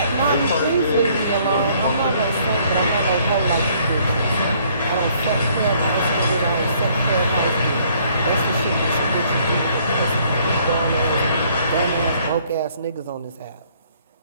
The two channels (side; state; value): both; inverted; correlation -0.63